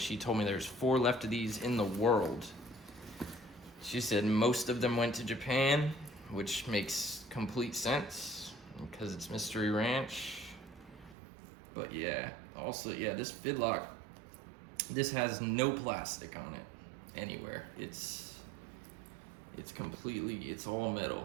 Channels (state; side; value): drops out; left; at 11.2 s